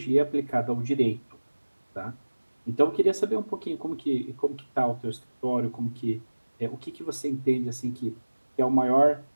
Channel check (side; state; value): both; inverted; correlation -1.00